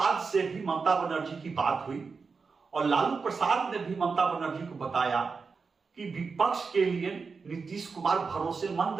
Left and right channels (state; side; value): quieter; left; 4.9 dB